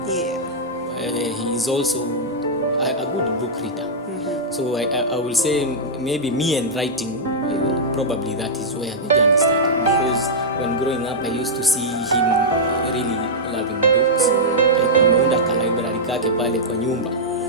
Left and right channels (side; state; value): both; normal; correlation -0.09